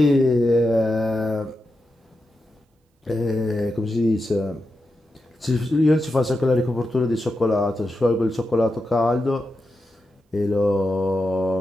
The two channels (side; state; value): both; normal; correlation 0.89